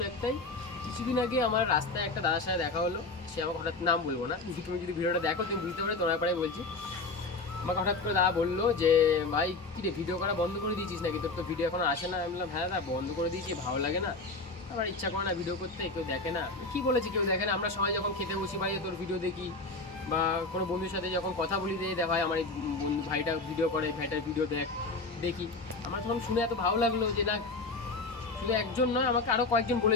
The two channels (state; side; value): quieter; right; 3.5 dB